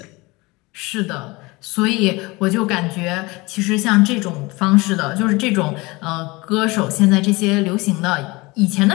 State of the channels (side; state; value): right; quieter; 23.6 dB